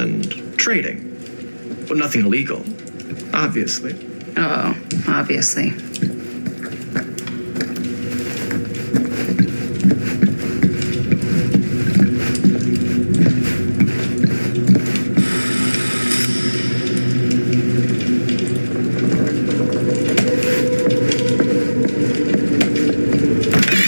trading. But nothing illegal, obviously. Oh, obviously.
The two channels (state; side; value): inverted; both; correlation -1.00